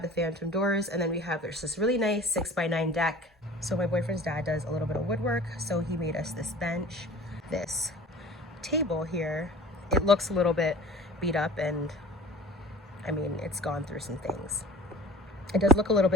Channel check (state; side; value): normal; both; correlation 0.43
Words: the phantom doors, and then there's this really nice 6x9 deck. So my boyfriend's dad does a little bit of woodwork. So he made us this bench, this table here. It looks a little bit beat up, and I mean, it's gone through some things. It does look a little